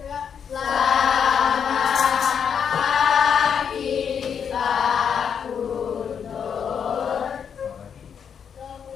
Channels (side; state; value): right; quieter; 7.4 dB